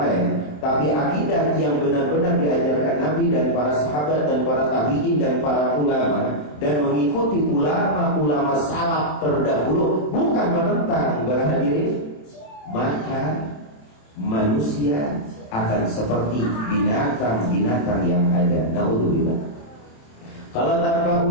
tapi akidah yang benar-benar diajarkan Nabi dan para sahabat dan para tabi'in dan para ulama, dan mengikuti ulama-ulama salaf terdahulu, bukan menentang. Berhadirin, maka manusia akan seperti binatang-binatang yang ada. Naudzubillah. Kalau tanpa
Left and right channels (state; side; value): late; right; 27 ms